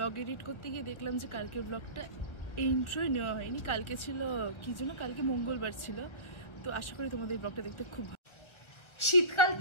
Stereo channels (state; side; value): late; right; 1.3 ms